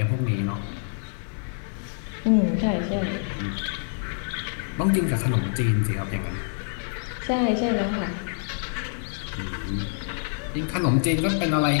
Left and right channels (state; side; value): silent; right; digital silence